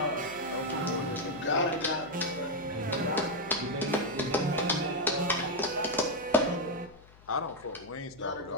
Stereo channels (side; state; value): left; noise; hum, 24 dB below the sound